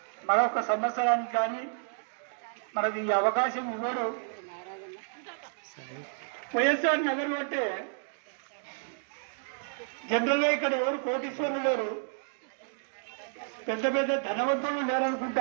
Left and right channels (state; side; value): silent; left; digital silence